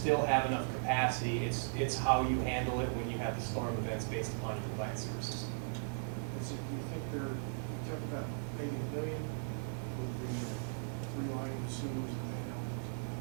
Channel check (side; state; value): left; silent; digital silence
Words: have enough capacity. It's how you handle it when you have the storm events based upon your combined sewer system. Do you think you talk about maybe 1 million with the 3 line sewers and then,